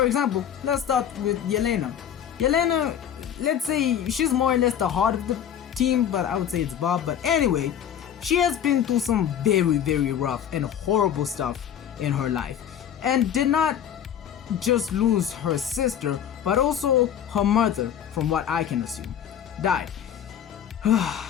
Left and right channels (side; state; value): right; quieter; 9.4 dB